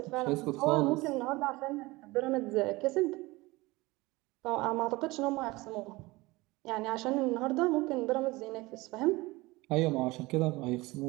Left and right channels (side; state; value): left; quieter; 21.6 dB